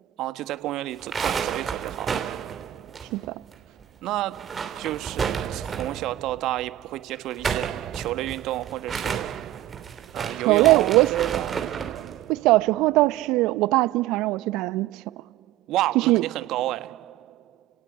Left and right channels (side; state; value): left; quieter; 14.2 dB